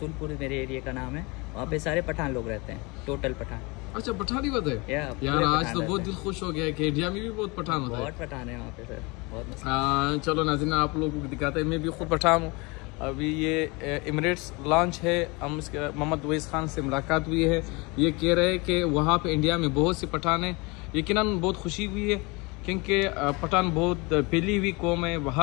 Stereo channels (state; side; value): quieter; right; 26.9 dB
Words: मेरे एरिया का नाम है, वहाँ पे सारे पठान लोग रहते हैं, टोटल पठान। अच्छा, पठानी बात है यार। आज तो बहुत दिल खुश हो गया है कि इंडिया में भी बहुत पठान होता है। बहुत पठान है वहाँ पे सर, बहुत। चलो नाज़रीन, आप लोगों को दिखाते हैं। मैं भी खुद पठान हूँ। अभी ये एमिरेट्स लॉन्च है, हम इसके मोहम्मद अवैस खान से मुलाकात हुई है। ये कह रहे हैं कि वहाँ पे इंडिया में बहुत से पठान हैं। यकीनन बहुत खुशी हुई है क्योंकि पठान बहुत फैली हुई कौम है,